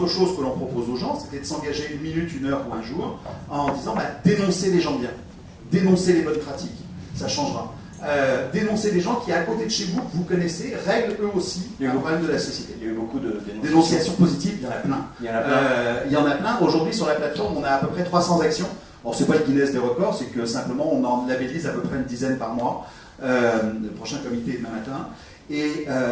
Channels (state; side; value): identical; both; correlation 1.00